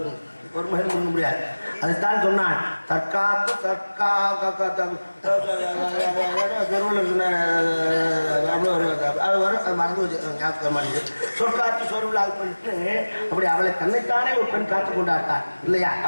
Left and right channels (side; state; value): both; inverted; correlation -1.00